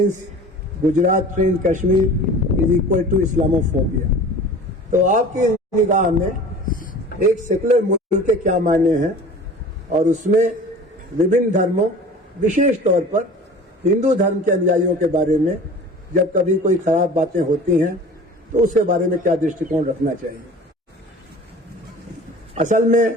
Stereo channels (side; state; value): both; normal; correlation 0.41